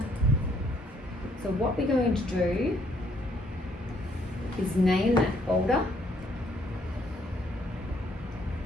So what we're going to do is name that folder,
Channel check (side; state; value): both; normal; correlation 0.68